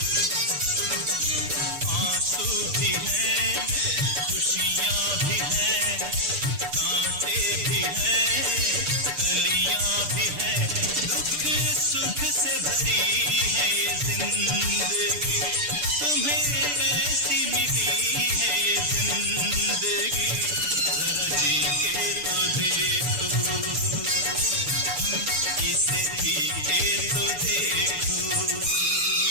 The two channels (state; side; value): late; left; 6.8 ms